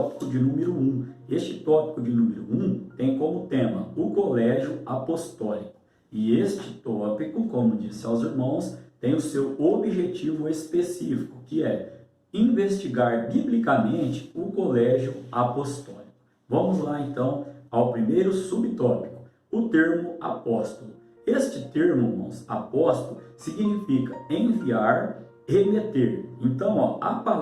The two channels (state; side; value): identical; both; correlation 1.00